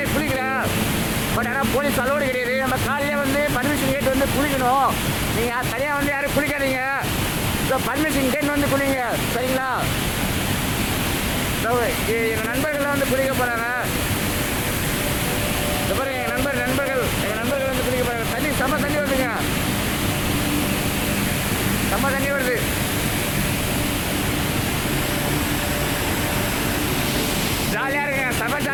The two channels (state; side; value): identical; both; correlation 1.00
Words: குளிக்கல. பட் ஆனால் போலீஸ் அலோடு கிடையாது. நம்ம காலையிலே வந்து பர்மிஷன் கேட்டு வந்து குளிக்கணும். நீங்கள் தனியாக வந்து யாரும் குளிக்காதீங்க. ஸோ பர்மிஷன் கேட்டு வந்து குளிங்க. சரிங்களா? ஸோ எங்கள் நண்பர்கள்லாம் வந்து குளிக்க போகிறாங்க. அப்புறம் எங்கள் நண்பர்கள் வந்து குளிக்க போகிறாங்க. தண்ணி செம்ம தண்ணி வருதுங்க, செம்ம தண்ணி வருது. ஜாலியாக இருக்குங்க, செம்ம